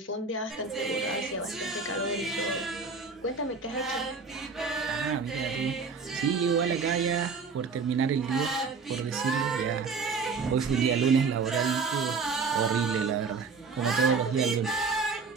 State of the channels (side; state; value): left; quieter; 4.9 dB